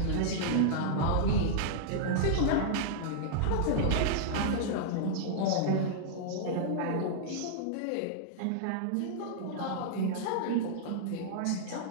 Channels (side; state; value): both; different; correlation -0.01